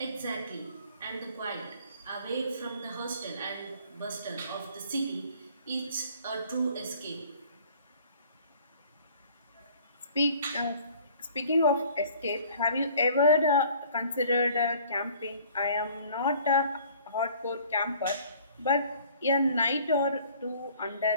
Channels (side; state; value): both; inverted; correlation -0.53